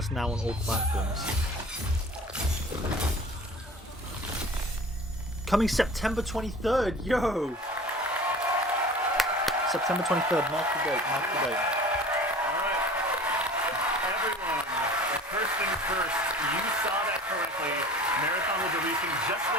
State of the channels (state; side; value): normal; both; correlation 0.42